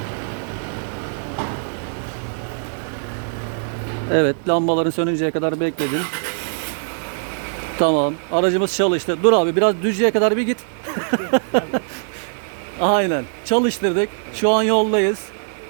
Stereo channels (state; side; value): silent; left; digital silence